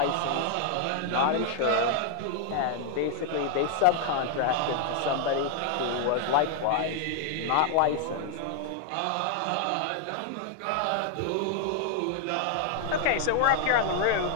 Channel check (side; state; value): both; different; correlation 0.00